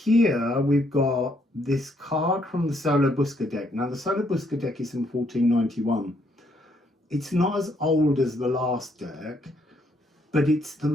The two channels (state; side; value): normal; both; correlation 0.71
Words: we've got this card from the Solo Busca deck. Now the Solo Busca deck is from 1491. It's not as old as the last deck, but it's the